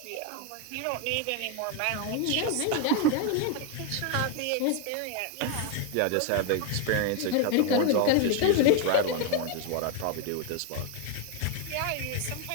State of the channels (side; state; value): both; different; correlation 0.01